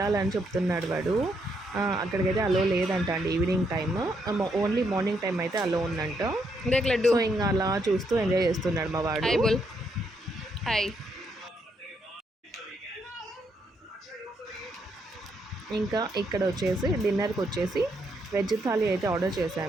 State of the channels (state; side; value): normal; both; correlation 0.76